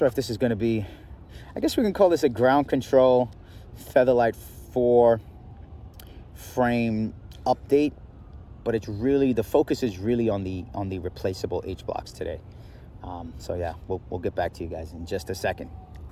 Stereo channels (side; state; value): both; identical; correlation 1.00